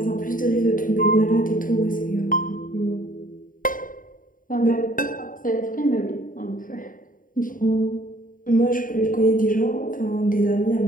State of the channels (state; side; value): late; right; 0.39 ms